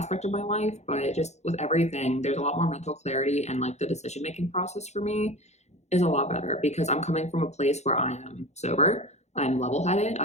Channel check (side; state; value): right; late; 0.32 ms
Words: of my life, but just with everything, there's a lot more mental clarity and like the decision making process for me is a lot better because I'm coming from a place where I am sober. I'm level headed.